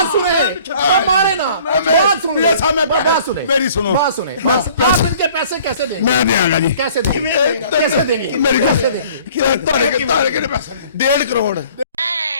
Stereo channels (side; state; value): both; inverted; correlation -0.54